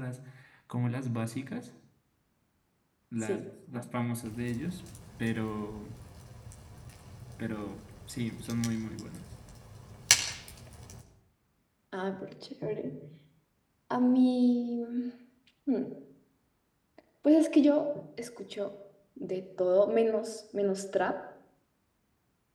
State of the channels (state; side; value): identical; both; correlation 1.00